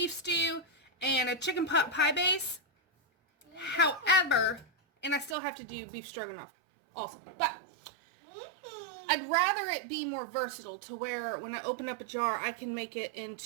stew and a chicken pot pie base. However, and I still have to do beef stroganoff also. But I'd rather it be more versatile to where when I open up a jar, I can make it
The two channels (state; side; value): drops out; left; at 5.4 s